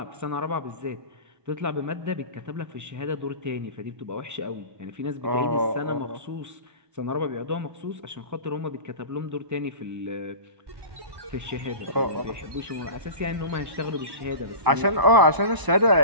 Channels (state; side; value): late; left; 1.0 ms